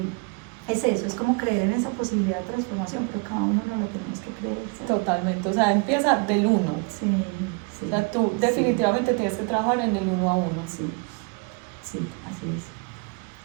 es eso, es como creer en esa posibilidad de transformación, pero cada uno no la tenemos que creer. ¿sí? Totalmente, o sea, empieza del uno. Sí, sí. O sea, tú definitivamente tienes que trabajar en el 1 a 1. Sí, sí, así es.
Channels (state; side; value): quieter; left; 32.7 dB